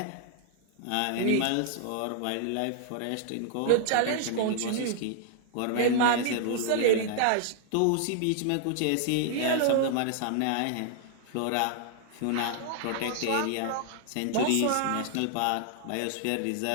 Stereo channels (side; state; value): both; different; correlation -0.01